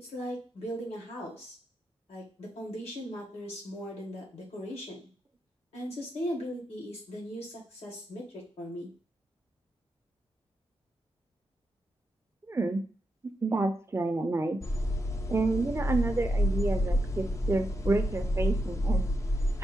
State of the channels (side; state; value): both; normal; correlation 0.85